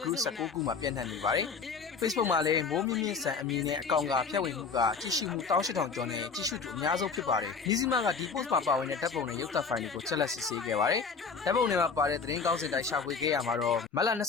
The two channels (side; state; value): right; quieter; 5.2 dB